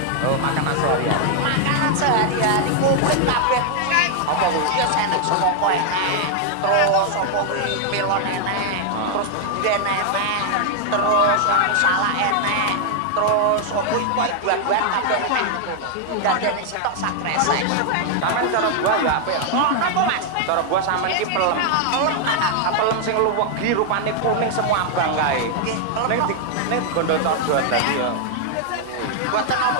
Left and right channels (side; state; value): both; different; correlation 0.00